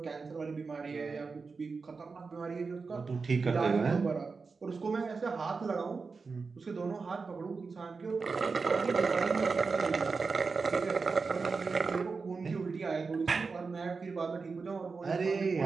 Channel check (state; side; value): quieter; left; 4.6 dB